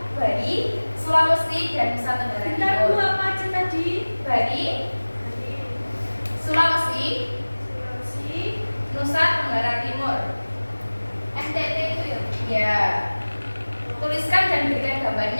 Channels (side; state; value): both; inverted; correlation -1.00